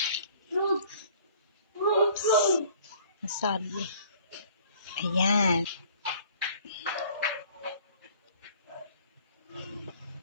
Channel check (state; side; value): inverted; both; correlation -0.54